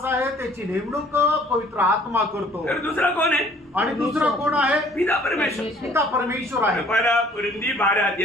आहे त्याची नेमणूक पवित्र आत्मा करतो फिर दूसरा कौन है आणि दुसरं कोण आहे पिता परमेश्वर पिता परमेश्वर आहे पहला कुरिन्दी 12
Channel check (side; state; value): both; normal; correlation 0.56